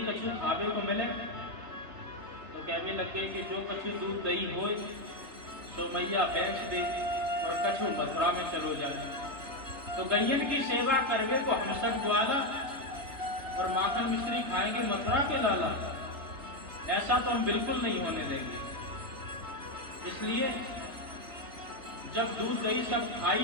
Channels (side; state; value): left; late; 3.3 ms